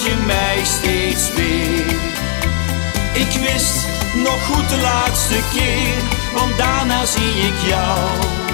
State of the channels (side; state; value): right; silent; 69 dB below the other